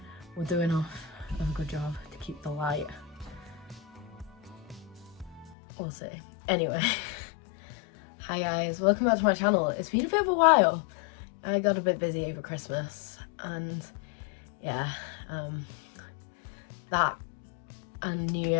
will do enough of a good job to keep the light. We'll see. Anyway, hi guys, welcome back to my channel. It's been a bit of a while. I got a bit busy over Christmas and yeah, that and New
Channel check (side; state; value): right; drops out; at 5.6 s